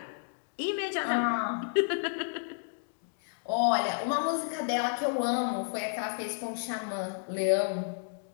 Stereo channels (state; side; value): silent; right; digital silence